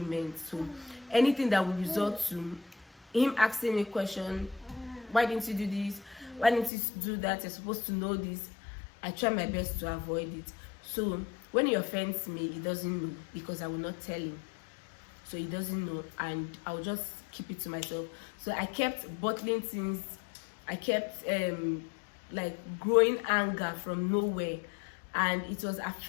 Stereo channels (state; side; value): drops out; right; at 6.7 s